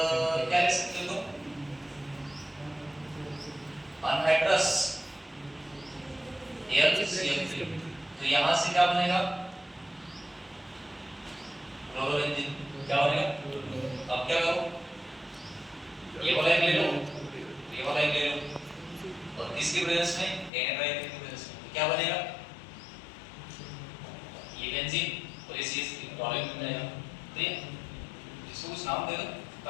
क्या ले सकते हो? Anhydrous AlCl3। तो यहाँ से क्या बनेगा? क्लोरोबेंजीन। क्या बनेगा? अब क्या करो? ये वाला एक ले लो, ये वाला एक ले लो और इसकी प्रेजेंस में एनाइड्राइड की प्रेजेंस में क्या बनेगा? ये बेंजीन और ये CH3 टॉलिन बन जाएगा, ठीक है? इसको कुछ नाम दे दो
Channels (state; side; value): drops out; right; at 20.5 s